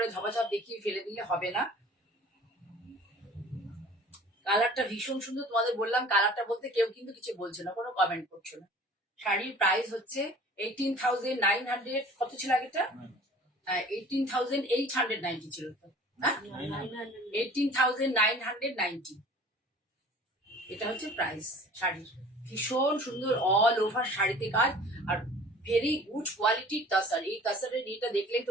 ঝপাঝপ দেখিয়ে ফেলে দিলে হবে না। কালারটা ভীষণ সুন্দর, তোমাদের বললাম কালারটা বলতে কেউ কিন্তু কিছু বলছে না, কোনো কমেন্ট করছো না। শাড়ির প্রাইস হচ্ছে 18,900, কত ছিল আগেটা? 18,890 ছিল তো, হ্যাঁ 18,990, এটা হচ্ছে প্রাইস শাড়ির। ভীষণ সুন্দর অল ওভার শাড়িতে কাজ, আর ভেরি গুড কোয়ালিটির তাসার। এই তাসারের এটা দেখলেই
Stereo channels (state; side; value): normal; both; correlation 0.46